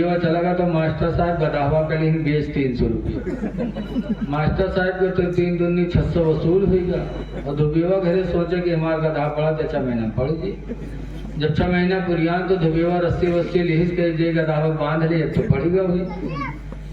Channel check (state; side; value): identical; both; correlation 1.00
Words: चला गया तो मास्टर साहब गधावा के लिए बेच 300 रुपये। मास्टर साहब को तो 3 दूनी 600 वसूल हुई और दुबिया घरे सोचे कि हमारा गधा पढ़ा तो 6 महीने में पढ़ जी। जब 6 महीना पुरियान तो दुबिया रस्सी वस्सी लिहिस के जे गधावा बांध लिए तो पढ़ेगा हुई।